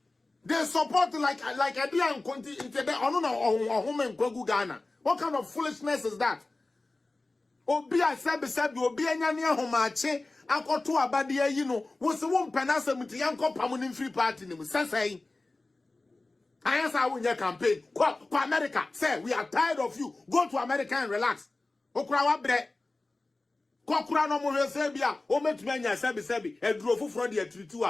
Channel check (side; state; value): right; quieter; 3.1 dB